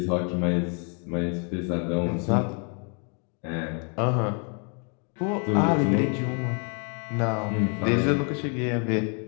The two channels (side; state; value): right; quieter; 39.1 dB